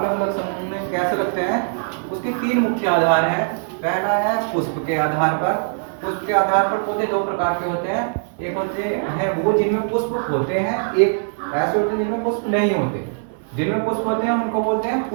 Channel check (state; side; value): silent; left; digital silence